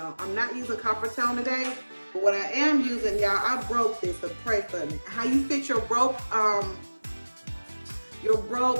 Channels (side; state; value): both; inverted; correlation -1.00